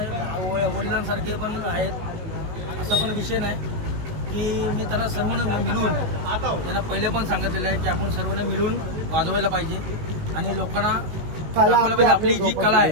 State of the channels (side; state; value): left; late; 19 ms